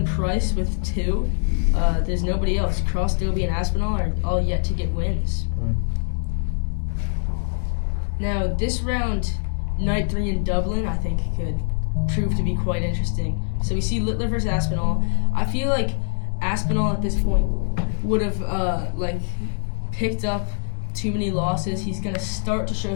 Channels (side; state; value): right; silent; digital silence